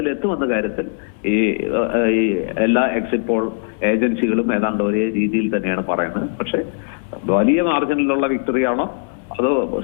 കാര്യത്തിൽ ഈ എല്ലാ എക്സിറ്റ് പോൾ ഏജൻസികളും ഏതാണ്ട് ഒരേ രീതിയിൽ തന്നെയാണ് പറയുന്നത്. പക്ഷെ വലിയ മാർജിനിലുള്ള വിക്ടറിയാണോ അതോ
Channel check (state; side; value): silent; right; 62 dB below the other